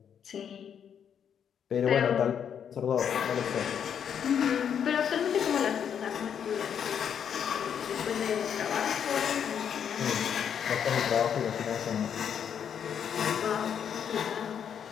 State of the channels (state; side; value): quieter; right; 8.2 dB